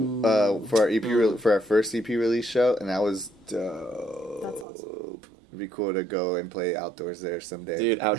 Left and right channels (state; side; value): drops out; left; at 4.7 s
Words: for our for our first EP release show, and that was dope. That's awesome. It'd be cool to go and play outdoors there someday. Dude,